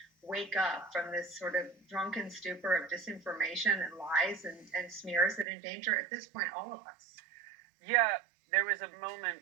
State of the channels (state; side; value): drops out; left; at 5.5 s